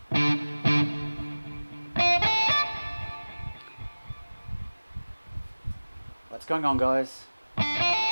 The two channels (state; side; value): inverted; both; correlation -1.00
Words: What's going on, guys?